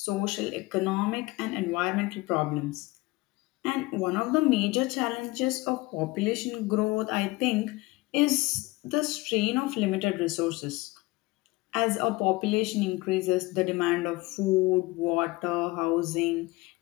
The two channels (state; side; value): quieter; right; 21.8 dB